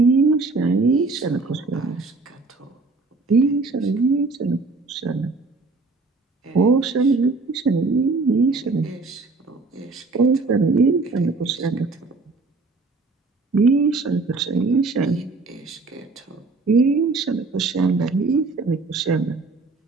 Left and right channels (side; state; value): left; quieter; 3.7 dB